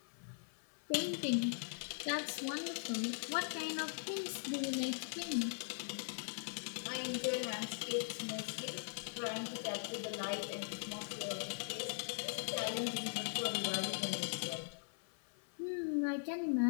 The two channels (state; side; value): silent; right; 50 dB below the other